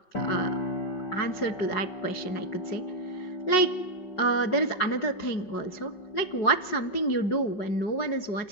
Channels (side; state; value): right; late; 5.4 ms